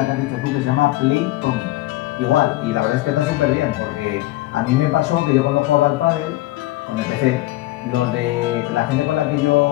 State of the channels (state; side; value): quieter; right; 17.4 dB